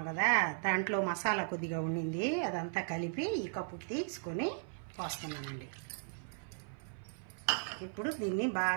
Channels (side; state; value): left; silent; 53 dB below the other